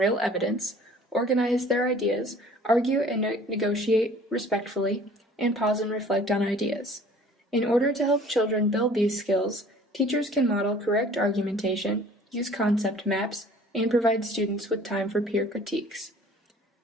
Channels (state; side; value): normal; both; correlation 0.50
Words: evidence, organize their ideas, argue and negotiate respectfully, and pause and reflect on ideas. In order to help children build these skills, teachers can model correct argumentation, use concept maps, and provide students with time for peer critiques.